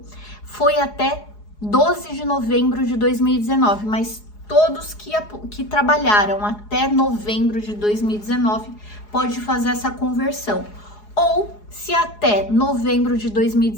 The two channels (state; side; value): late; right; 4.8 ms